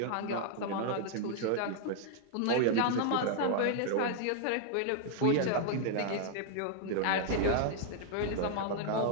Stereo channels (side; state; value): both; different; correlation -0.01